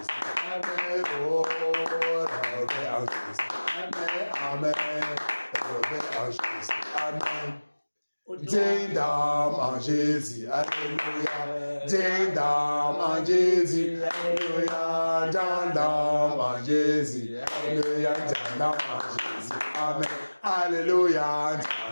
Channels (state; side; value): inverted; both; correlation -1.00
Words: Amen. Oh. Réveil en Jésus. Amen. Amen. Réveil en Jésus. Amen. Dindam en Jésus, alléluia. Dindam en Jésus, alléluia. Dindam en Jésus, alléluia. Dindam en Jésus, amen. Alléluia.